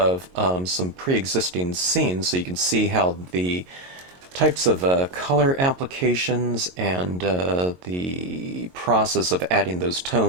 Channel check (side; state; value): left; late; 22 ms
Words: some pre-existing scenes so you can see how the types of color applications and the process of adding those